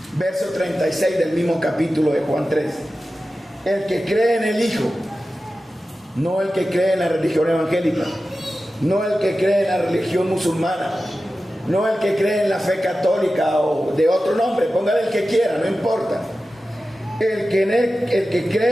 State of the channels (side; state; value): both; normal; correlation 0.94